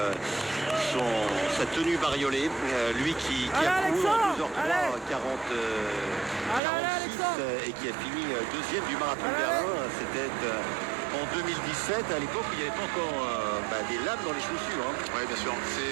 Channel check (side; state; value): left; drops out; at 6.6 s